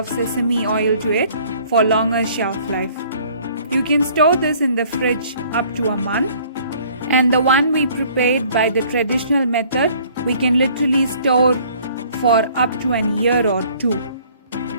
sesame oil to it for longer shelf life. You can store this in the fridge up to a month, and the one we prepared by the traditional method, we can literally store for up to an year or 2.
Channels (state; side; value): inverted; both; correlation -0.56